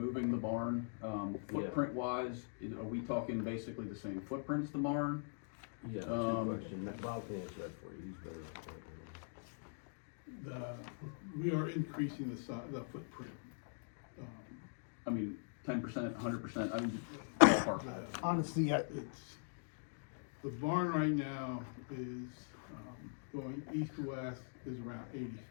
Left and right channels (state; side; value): silent; right; digital silence